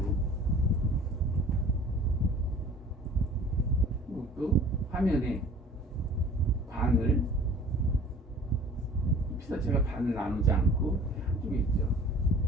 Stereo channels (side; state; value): both; normal; correlation 0.47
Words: 또 화면에 반을 피사체가 반을 나누지 않고 한쪽에 있죠.